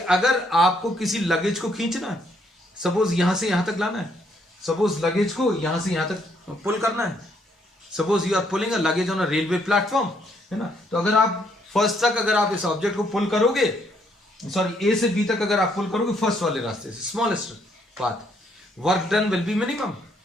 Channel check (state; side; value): normal; both; correlation 0.71